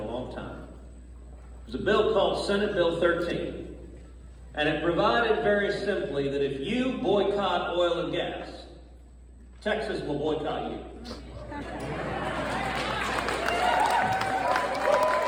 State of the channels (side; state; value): both; identical; correlation 1.00